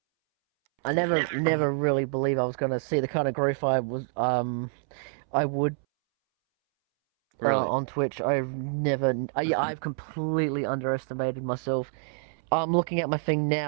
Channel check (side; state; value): left; silent; 60 dB below the other